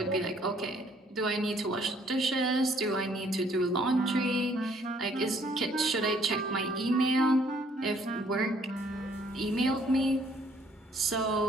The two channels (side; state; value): both; normal; correlation 0.63